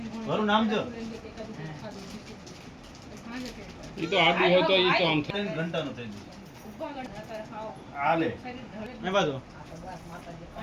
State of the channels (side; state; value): both; identical; correlation 1.00